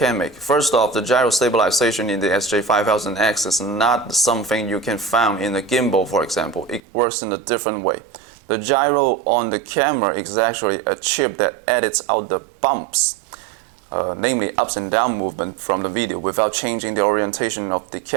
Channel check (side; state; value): left; drops out; at 6.8 s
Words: make? First off, the gyro stabilization in the SJ5000X is not something you can find in a gimbal, for example. It works in a different way. The gyro on the camera is actually a chip that edits out the bumps, namely ups and down movement from the video without changing the orientation of the